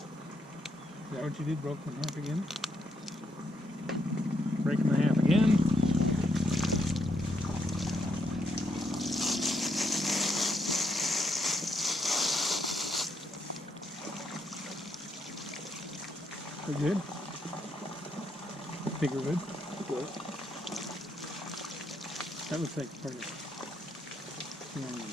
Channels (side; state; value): both; normal; correlation 0.77